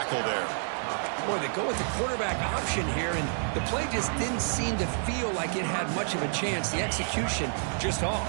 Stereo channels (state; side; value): silent; left; digital silence